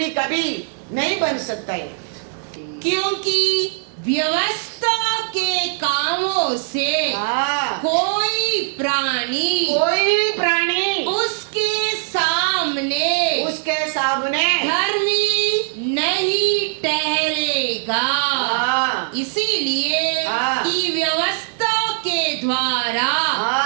कभी नहीं बन सकता है, क्योंकि व्यवस्था के कामों से कोई प्राणी उसके सामने धर्मी नहीं ठहरेगा। इसीलिए हाँ। कि व्यवस्था के द्वारा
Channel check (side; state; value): left; silent; digital silence